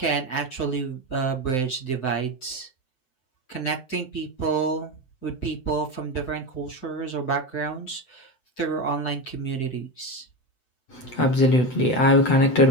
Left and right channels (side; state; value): right; late; 7.9 ms